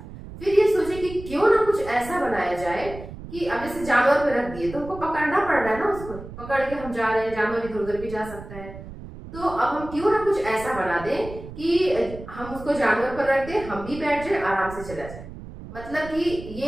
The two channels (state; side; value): noise; right; rumble, 13 dB below the sound